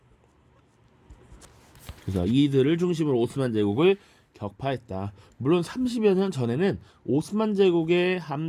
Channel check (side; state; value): both; identical; correlation 1.00